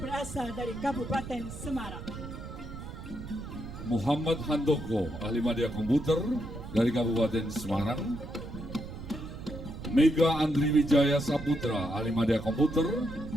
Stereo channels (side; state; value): right; noise; rumble, 10 dB below the sound